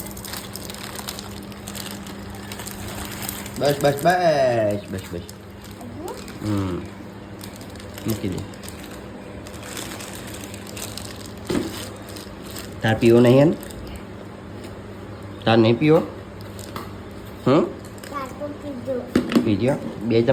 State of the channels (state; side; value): identical; both; correlation 1.00